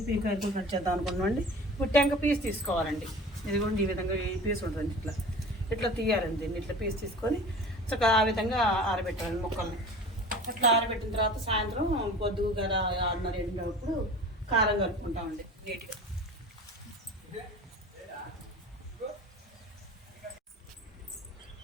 ఈ కాయలు కట్ చేద్దాం అనుకున్నామండి. ఇప్పుడు టెంక పీస్ తీసుకోవాలండి. ఇదిగోండి ఈ విధంగా ఈ పీస్ ఉంటుంది. ఇట్లా ఇట్లా తీయాలండి. దీన్ని ఇట్లా పీస్ తీసుకొని చక్కగా ఆ విధంగా ఆరబెట్టాలండి ముక్కల్ని. అట్లా ఆరబెట్టిన తర్వాత సాయంత్రం పొద్దుగు కదా 6:30 కారం కలుపుకుంటామండి నీట్గా.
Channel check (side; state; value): both; normal; correlation 0.39